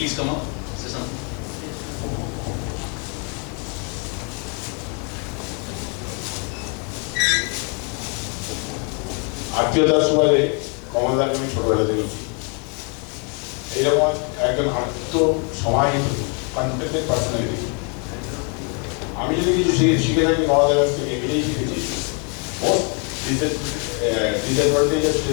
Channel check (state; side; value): quieter; right; 37.3 dB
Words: come up? Say something. আত্মীয়তার সুবাদে কমলদাকে আমি ছোটবেলা দেখেছি। এইরকম একজন আত্ম সমাহিত confident personality. আমি যদি কিছু শিখে থাকি কমলদার কাছ থেকে এটাই শিখেছি, মোস্ট ডিসঅ্যাডভান্টেজের